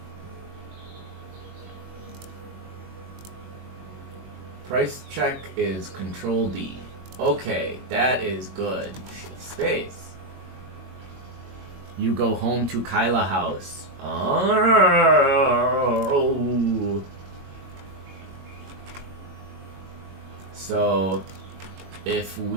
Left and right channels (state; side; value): late; left; 21 ms